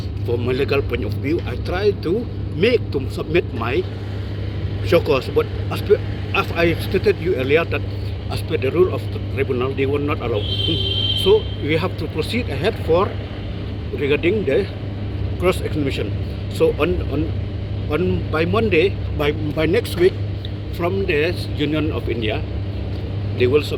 from my legal point of view, I try to submit my show cause. But as I stated you earlier that as per the rule of the tribunal, they will not allow. So we have to proceed ahead for regarding the cross examination. So on by Monday, by next week, from the Union of India, they will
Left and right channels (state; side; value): identical; both; correlation 1.00